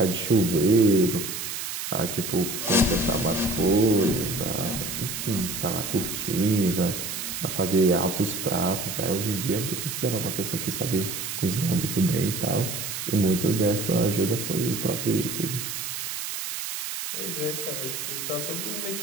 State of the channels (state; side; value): noise; right; hiss, 5 dB below the sound